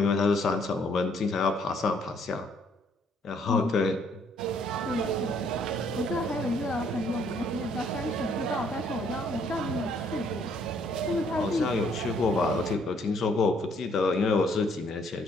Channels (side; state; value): both; normal; correlation 0.65